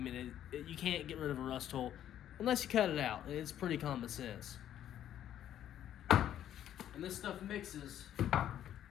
you can't get rid of a rust hole unless you cut it out. It's pretty common sense. And this stuff mixes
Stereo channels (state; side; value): quieter; right; 11.0 dB